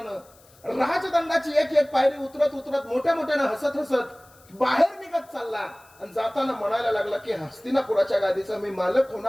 राजदंडाची एक पायरी उतरत उतरत मोठ्यानं हसत बाहेर निघत चालला आणि जाताना म्हणायला लागला की हस्तिनापुराच्या गादीचा मी मालक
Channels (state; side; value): noise; left; hiss, 28 dB below the sound